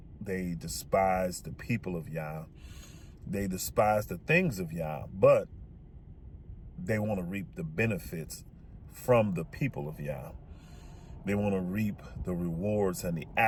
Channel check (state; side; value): identical; both; correlation 1.00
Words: They despise the people of Yah. They despise the things of Yah, but they want to reap the benefits from the people of Yah. They want to reap the rewards and the